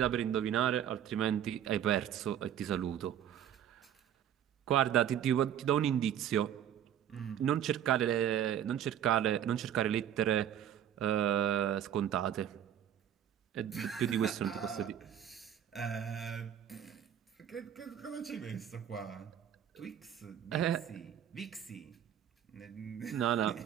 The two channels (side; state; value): left; quieter; 9.9 dB